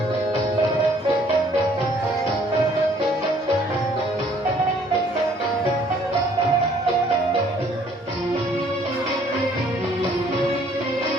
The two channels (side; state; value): both; normal; correlation 0.60